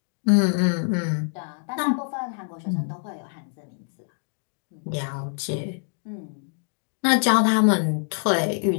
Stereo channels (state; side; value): silent; right; 57 dB below the other